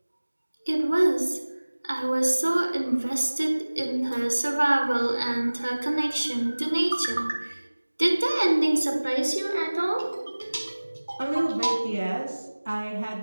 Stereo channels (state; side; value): inverted; both; correlation -1.00